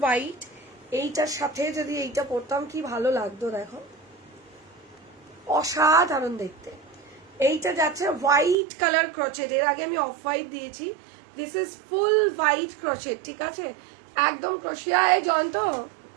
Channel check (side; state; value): left; drops out; at 8.6 s